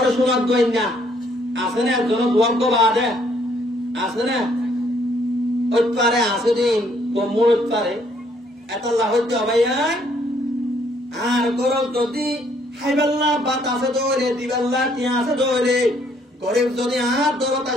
শোনাব দুনিয়া আছে না একজন দুয়াগ্য বাদে আছে না ওই পারে আছে দিন কমুর পারে এত লাহতে ভাইয়া আর গরব যদি হাইবাল্লা বাতাসে দৌড়ে দিবাল্লা টিয়াসে দৌড়ে গরিব যদি আর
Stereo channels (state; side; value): normal; both; correlation 0.67